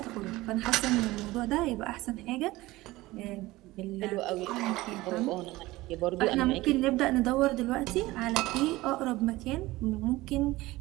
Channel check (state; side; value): quieter; left; 18.9 dB